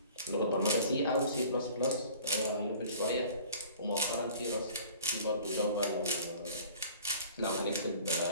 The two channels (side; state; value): both; inverted; correlation -0.46